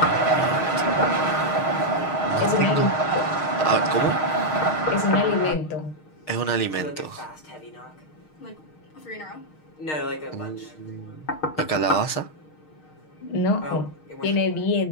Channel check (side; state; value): right; late; 6.5 ms